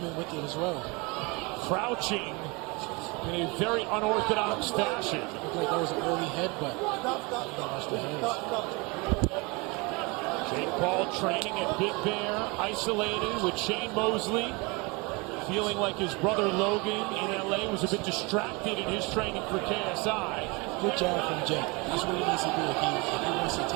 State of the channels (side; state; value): left; quieter; 27.3 dB